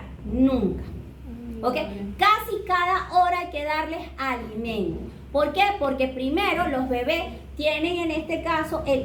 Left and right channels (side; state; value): both; identical; correlation 1.00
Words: Nunca. ¿Ok? Casi cada hora hay que darles alimento. ¿Por qué? Porque primero los bebés tienen en este caso